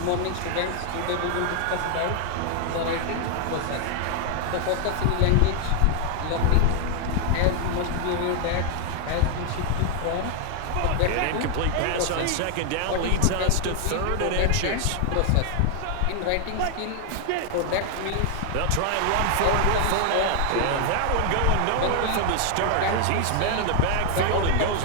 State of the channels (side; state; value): both; different; correlation 0.00